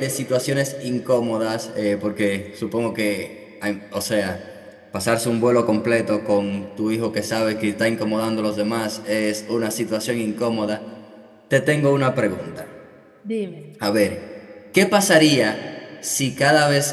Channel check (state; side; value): identical; both; correlation 1.00